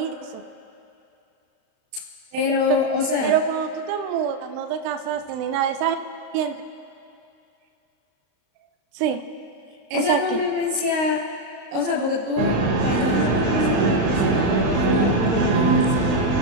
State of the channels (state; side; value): late; left; 35 ms